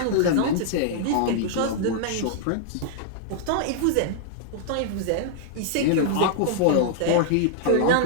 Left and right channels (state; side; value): different; both; correlation -0.01